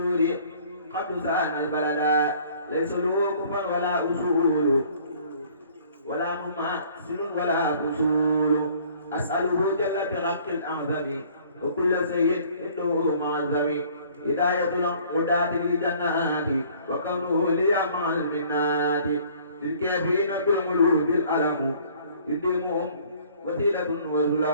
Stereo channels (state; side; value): inverted; both; correlation -0.55